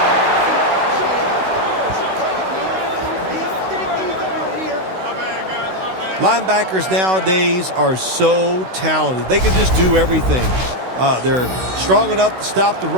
Linebackers nowadays are so talented. They can just do everything. They're strong enough to stop the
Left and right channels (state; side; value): late; left; 16 ms